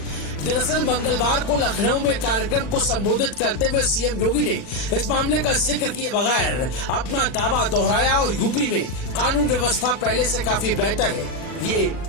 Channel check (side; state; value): right; late; 40 ms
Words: दरअसल मंगलवार को लखनऊ में कार्यक्रम को संबोधित करते हुए सीएम योगी ने इस मामले का जिक्र किए बगैर अपना दावा दोहराया और यूपी में कानून व्यवस्था पहले से काफी बेहतर है ये